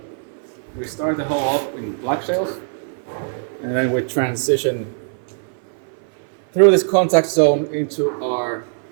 we start the hole off in black shales, and then we transition through this contact zone into our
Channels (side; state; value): left; silent; 57 dB below the other